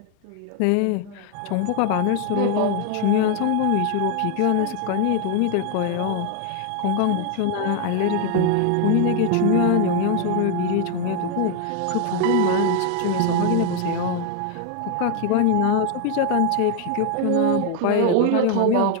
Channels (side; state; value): both; different; correlation 0.00